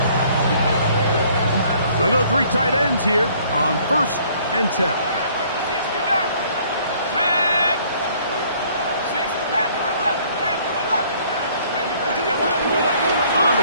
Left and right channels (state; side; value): inverted; both; correlation -0.59